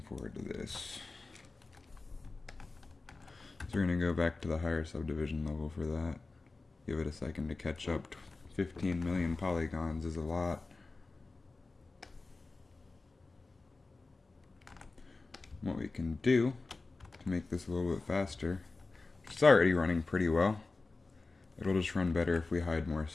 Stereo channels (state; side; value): quieter; right; 3.6 dB